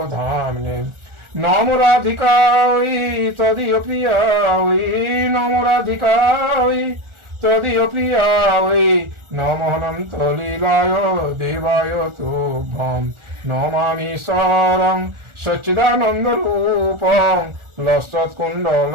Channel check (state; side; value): late; left; 1.4 ms